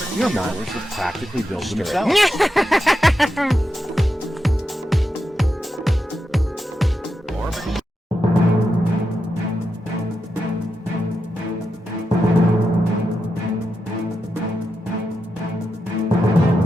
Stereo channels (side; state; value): both; normal; correlation 0.87